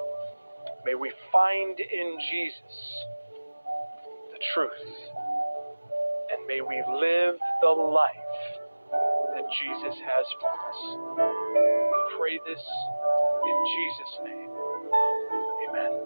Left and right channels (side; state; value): both; inverted; correlation -1.00